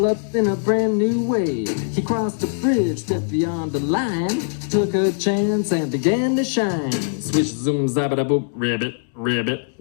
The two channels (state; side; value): silent; right; digital silence